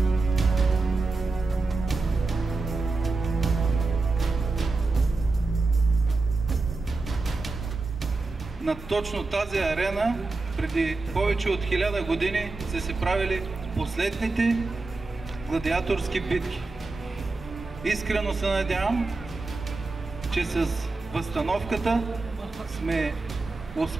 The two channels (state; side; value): quieter; left; 3.6 dB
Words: На точно тази арена преди повече от 1000 години са се правили последните гладиаторски битки. Искрено се надявам, че с възстановката сме